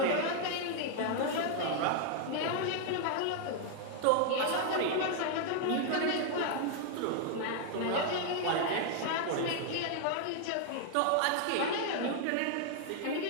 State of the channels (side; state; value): both; different; correlation 0.00